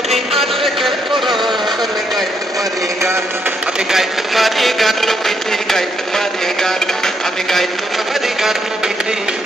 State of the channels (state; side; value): normal; both; correlation 0.76